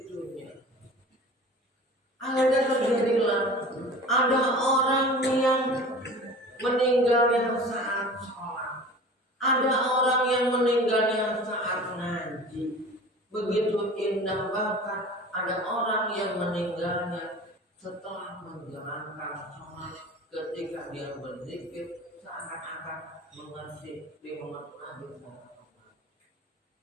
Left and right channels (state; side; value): normal; both; correlation 0.39